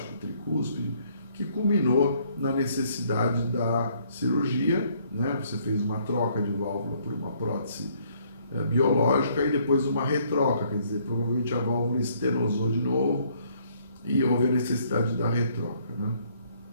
tricúspide, que culminou na necessidade da cirurgia, né? Você fez uma troca de válvula por uma prótese biológica e depois uma retroca, quer dizer, provavelmente a válvula estenosou de novo e houve a necessidade da retroca, né?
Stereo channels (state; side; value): inverted; both; correlation -0.65